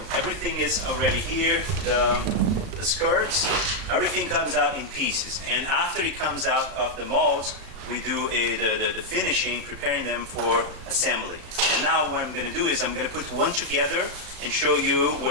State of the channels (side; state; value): left; late; 35 ms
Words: everything is already here. The skirts, everything comes out in pieces. And after it comes out of the molds, we do the finishing, preparing them for assembly. And now what I'm going to do is I'm going to put one together and show you